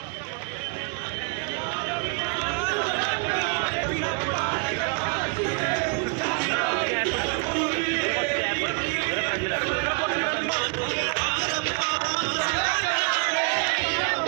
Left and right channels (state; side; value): quieter; left; 34.2 dB